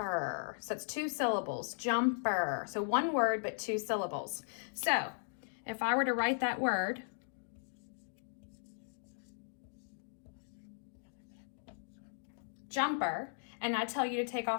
So it's 2 syllables, jumper. So one word, but 2 syllables. So if I were to write that word, jumper, and I tell you to take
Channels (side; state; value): right; silent; digital silence